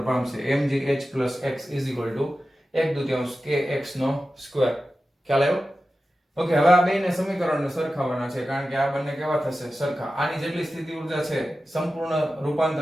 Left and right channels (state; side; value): normal; both; correlation 0.93